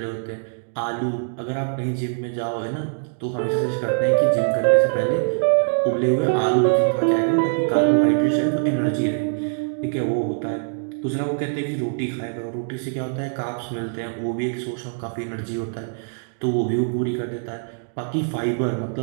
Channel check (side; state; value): left; silent; digital silence